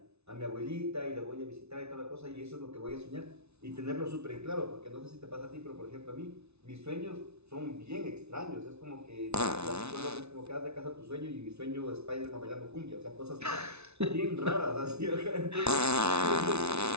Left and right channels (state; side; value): late; left; 0.81 ms